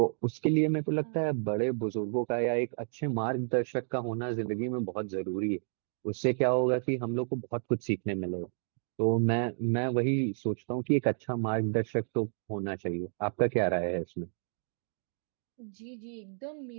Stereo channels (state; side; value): silent; left; digital silence